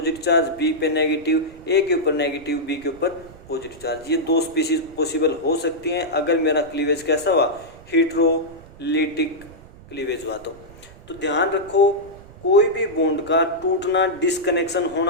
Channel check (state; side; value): noise; right; rumble, 21 dB below the sound